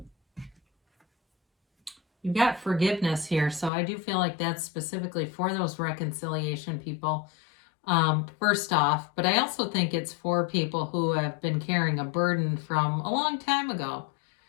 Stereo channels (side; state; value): right; drops out; at 3.7 s